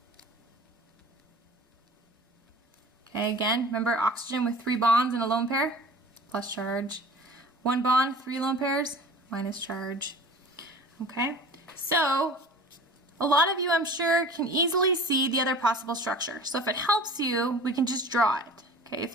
Okay, again, remember oxygen with 3 bonds in a lone pair, plus charge. 1 bond, 3 lone pairs, minus charge. Okay. So, a lot of you, I'm sure, can easily see the other possible structure. So if it helps you, we can just draw it. Okay, if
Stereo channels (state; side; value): normal; both; correlation 0.41